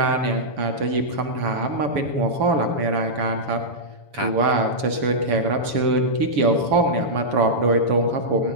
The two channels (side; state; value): left; late; 7.0 ms